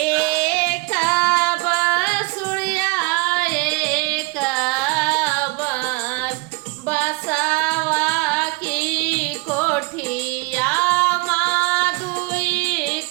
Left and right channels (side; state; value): left; quieter; 26.9 dB